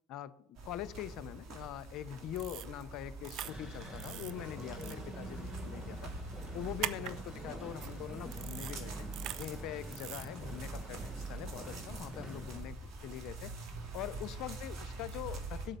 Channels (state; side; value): normal; both; correlation 0.44